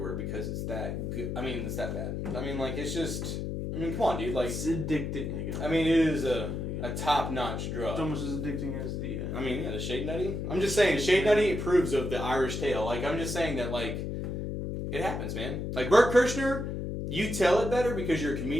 because it's that good. I mean, it's that bad. I mean, like, it's just, come on, dude. Like, it's addicting. I mean, it is a top-notch drug. It's almost as addicting as the... I mean, yeah, the Shade Nutty. I'm just saying, Shade Nutty approves of the Irish tale. Like, I'm just saying that, like, it happens, man. Like, Burt Kirshner, you tell it better because you're a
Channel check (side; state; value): left; noise; hum, 3 dB below the sound